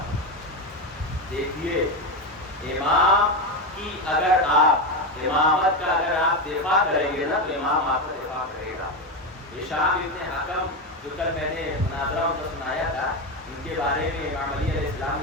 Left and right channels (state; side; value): normal; both; correlation 0.13